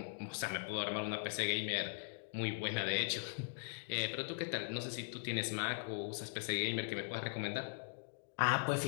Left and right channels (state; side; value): silent; right; digital silence